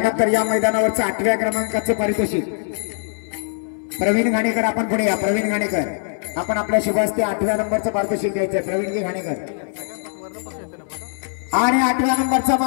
या मैदानावरचं 8व्या क्रमांकाचं पारितोषिक प्रवीण घाणेकर. आपण पुढे या. प्रवीण घाणेकर, आपण आपल्या शुभास्ते 8व्या नंबरचं पारितोषिक द्यायचं. प्रवीणजी घाणेकर. आणि 8व्या नंबरचा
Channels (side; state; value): right; silent; digital silence